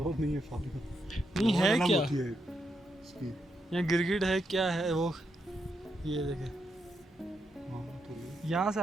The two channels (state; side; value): normal; both; correlation 0.81